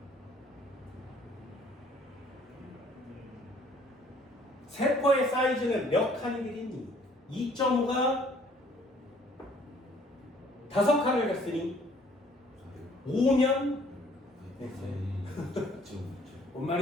세포의 사이즈는 몇 칸이 되겠니? 2.5가 5칸을 갔으니 5면 뭔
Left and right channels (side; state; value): both; normal; correlation 0.59